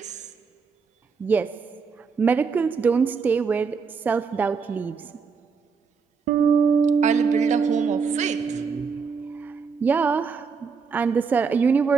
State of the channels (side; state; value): left; quieter; 5.5 dB